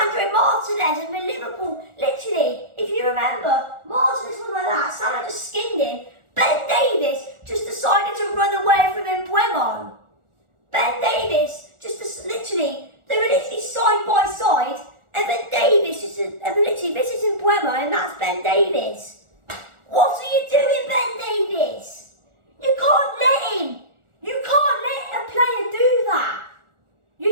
Martinez and the Liverpool. Literally, if you remember, Martinez was like that. Salah just skinned him. Ben Davies just decided to run away from Mbeumo. Ben Davies they were literally side by side, and then Davies this is Mbeumo, and that's Ben Davies. What are you doing, Ben Davies? You can't let a player do that. You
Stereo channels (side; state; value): left; late; 1.4 ms